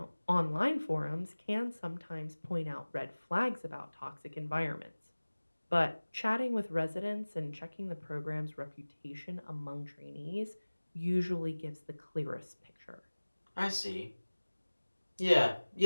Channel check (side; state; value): both; inverted; correlation -1.00